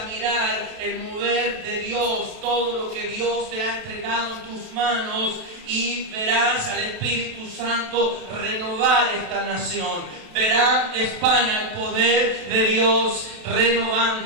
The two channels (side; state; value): left; late; 28 ms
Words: mirar el mover de Dios, todo lo que Dios te ha entregado en tus manos, y verás al Espíritu Santo renovar esta nación. Verá España el poder de Dios